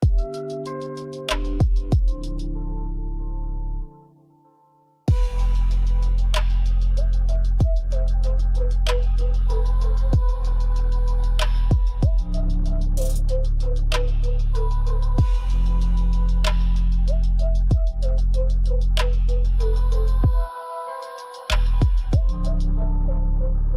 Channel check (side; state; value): both; identical; correlation 1.00